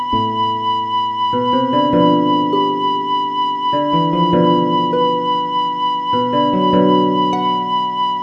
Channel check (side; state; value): both; identical; correlation 1.00